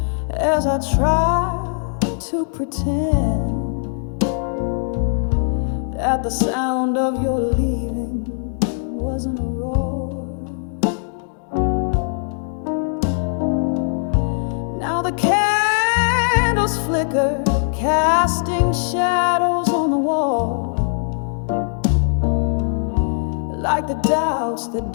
as I tried to pretend that the sound of your leaving wasn't a roar. Now the candles flicker, casting shadows on the wall, like the doubts that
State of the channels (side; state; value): right; silent; 65 dB below the other